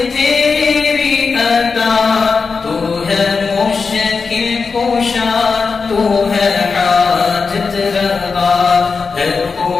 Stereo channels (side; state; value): right; quieter; 4.8 dB